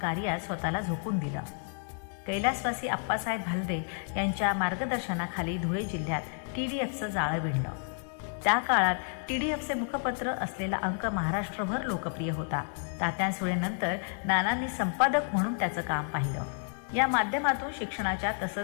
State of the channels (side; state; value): right; silent; 56 dB below the other